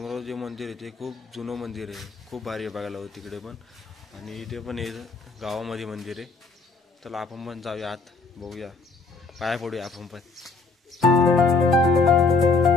जे मंदिर आहे ते खूप जुनं मंदिर आहे, खूप भारी आहे बघायला तिकडे पण। आणि इथे पण आहे गावामध्ये मंदिर आहे। चला आपण पण जाऊया आत, बघूया, पाया पडूया आपण पण।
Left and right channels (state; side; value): quieter; right; 3.9 dB